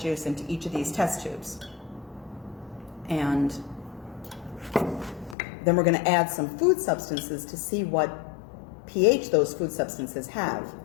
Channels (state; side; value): drops out; right; at 5.4 s